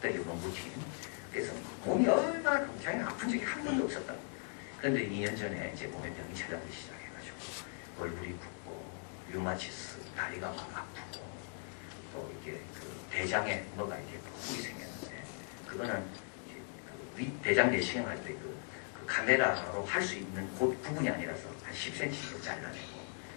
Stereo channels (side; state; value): right; silent; 52 dB below the other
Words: 노무팀. 그래서 몸이 얼마나 굉장히 아픈 적이 한 번도 없었다. 그런데 2년 전에 이제 몸에 병이 찾아오기 시작해가지고 얼굴이 붓고 류마티스, 다리가 막 아프고 또 이게 그 대장에 뭐가 이렇게 뿔이 생겼는데 그거는 대장 내시경 할 때 그 카메라로 할 수 있는 그 부분이 아니라서 한 10cm 잘라내고